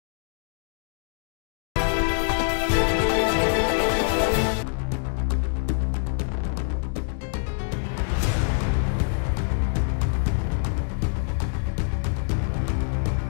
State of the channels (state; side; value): silent; right; digital silence